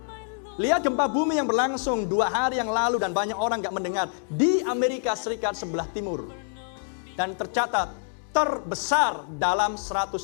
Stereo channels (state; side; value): silent; right; digital silence